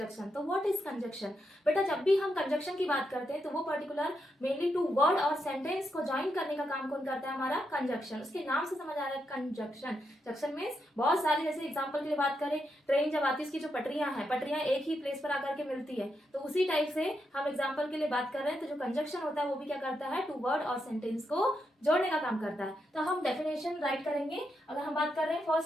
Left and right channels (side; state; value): both; normal; correlation 0.83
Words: तो व्हाट इज कंजक्शन? बेटा, जब भी हम कंजक्शन की बात करते हैं तो वो पर्टिकुलर मेनली टू वर्ड और सेंटेंस को ज्वाइन करने का काम कौन करता है? हमारा कंजक्शन। उसके नाम से समझ आ रहा है कंजक्शन। जंक्शन मीन्स बहुत सारे, जैसे एग्जाम्पल के लिए बात करें, ट्रेन जब आती है उसकी जो पटरियां हैं, पटरियां एक ही प्लेस पर आकर के मिलती है, तो उसी टाइप से हम एग्जाम्पल के लिए बात कर रहे हैं। तो जो कंजक्शन होता है वो भी क्या करता है? टू वर्ड और सेंटेंस को जोड़ने का काम करता है। तो हम डेफिनेशन राइट करेंगे। अगर हम बात कर रहे हैं,